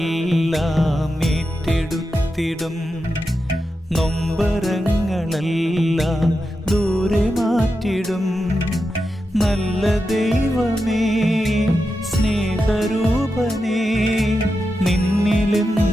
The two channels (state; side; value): normal; both; correlation 0.89